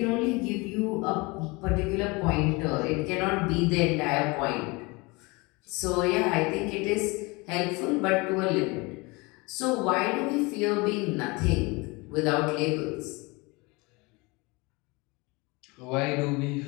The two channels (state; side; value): quieter; right; 25.8 dB